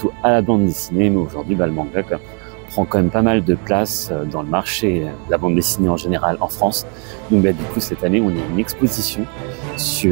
à la bande dessinée, mais aujourd'hui le manga prend quand même pas mal de place dans le marché de la bande dessinée en général en France. Donc du coup cette année on a une exposition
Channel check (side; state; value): left; quieter; 38.7 dB